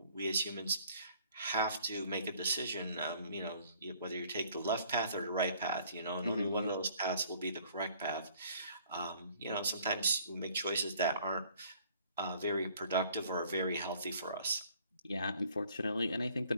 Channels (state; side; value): inverted; both; correlation -0.58